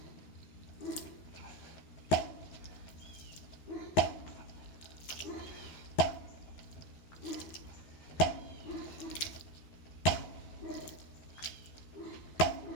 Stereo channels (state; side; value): late; right; 13 ms